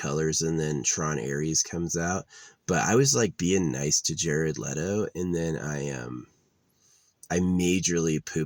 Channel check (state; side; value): identical; both; correlation 1.00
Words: and then Tron Ares comes out. But I was like being nice to Jared Leto, and then I majorly